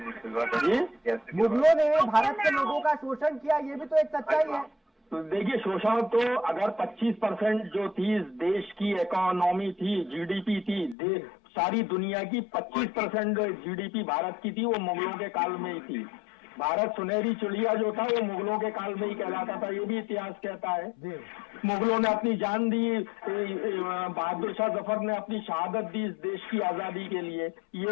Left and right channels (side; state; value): right; drops out; at 11.0 s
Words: मुगलों ने, भारत के लोगों का शोषण किया, ये भी तो एक सच्चाई है। तो देखिए, शोषण तो अगर 25% जो थी इस देश की इकोनॉमी थी, GDP थी, सारी दुनिया की 25% GDP भारत की थी, वो मुगलों के काल में ही थी। भारत सुनहरी चिड़िया जो था वो मुगलों के काल में ही कहलाता था, ये भी इतिहास कहता है। मुगलों ने अपनी जान दी, बहादुर शाह जफर ने अपनी शहादत दी इस देश की आजादी के लिए,